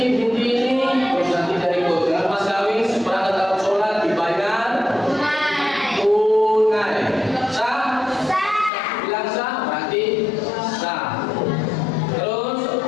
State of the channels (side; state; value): right; drops out; at 8.7 s